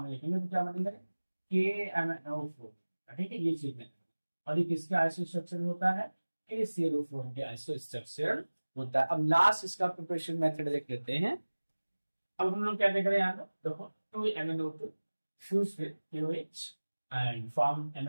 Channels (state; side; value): inverted; both; correlation -1.00